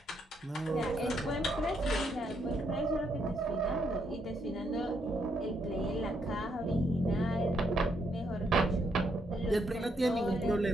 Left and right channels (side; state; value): both; normal; correlation 0.76